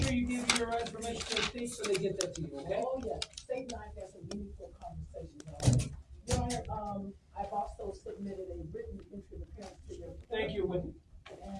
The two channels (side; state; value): both; identical; correlation 1.00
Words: sure you give your information to the state so they get that to you, okay? Oh, yeah, state and I had some meaningful conversations already. Your Honor, I've also submitted a written entry of appearance to your. Thank you, Wendy.